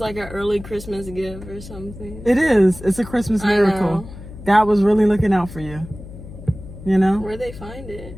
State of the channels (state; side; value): noise; left; hum, 14 dB below the sound